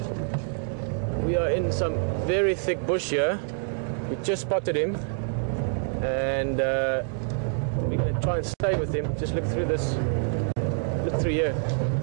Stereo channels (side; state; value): left; silent; 60 dB below the other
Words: are in some very thick bush here. We just spotted him, and we're going to try and stay with him. Just look through this, look through here,